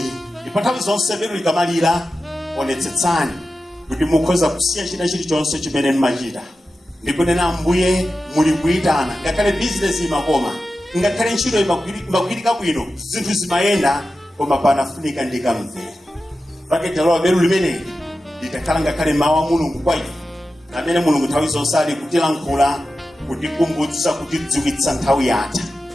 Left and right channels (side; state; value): both; normal; correlation 0.93